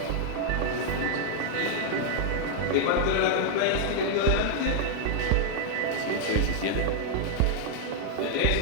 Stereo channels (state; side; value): different; both; correlation -0.01